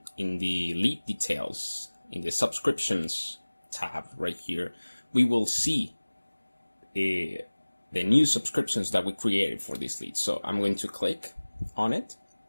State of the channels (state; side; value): inverted; both; correlation -1.00